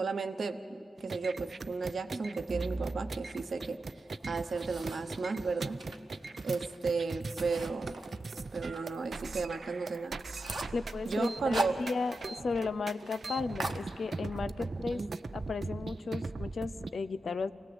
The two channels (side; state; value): both; normal; correlation 0.89